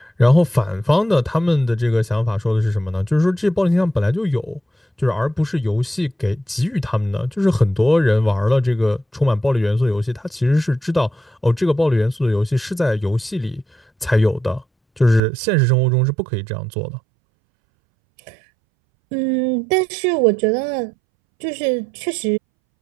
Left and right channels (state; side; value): drops out; left; at 15.2 s